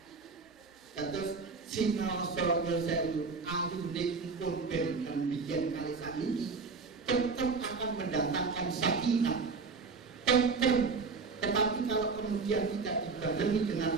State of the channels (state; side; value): quieter; left; 4.6 dB